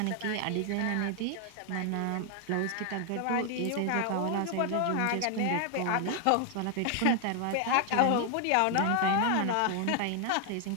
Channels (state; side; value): different; both; correlation 0.00